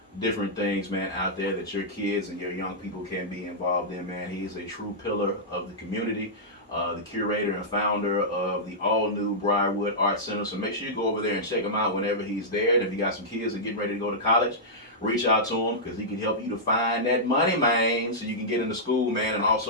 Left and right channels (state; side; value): normal; both; correlation -0.11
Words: different things, man, out there that your kids and your young people can be involved in, man. He is a true pillar of the community, the curator and founder of the all-new Briarwood Arts Center. So make sure you go over there and check him out whenever he's there. And if you got some kids that are getting ready to go to college, reach out to him because he can help you to find that money, man, so you can get into school, man, and